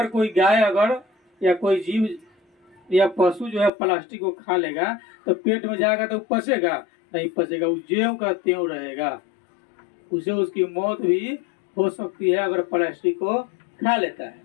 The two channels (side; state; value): right; drops out; at 3.7 s